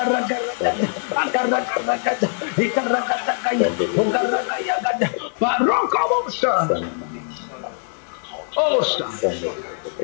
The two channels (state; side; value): silent; right; 64 dB below the other